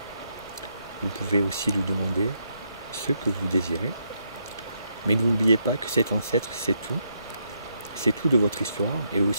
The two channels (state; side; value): inverted; both; correlation -0.77